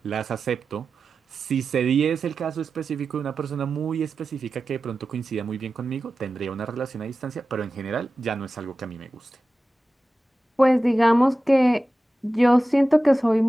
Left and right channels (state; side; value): normal; both; correlation 0.94